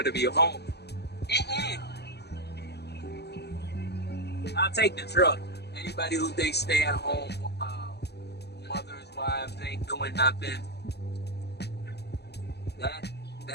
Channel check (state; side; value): late; right; 0.48 ms